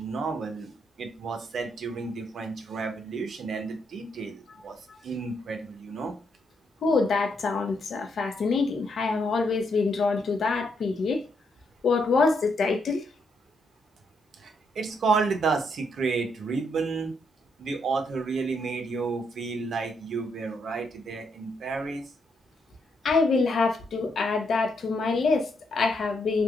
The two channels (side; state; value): both; normal; correlation 0.77